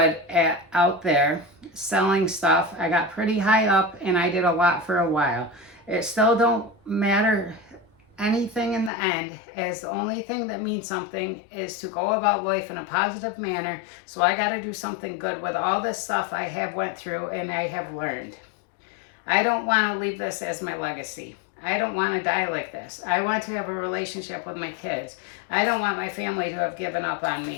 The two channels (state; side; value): drops out; right; at 8.9 s